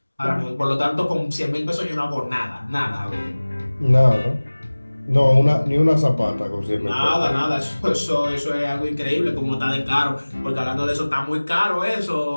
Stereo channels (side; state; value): both; inverted; correlation -1.00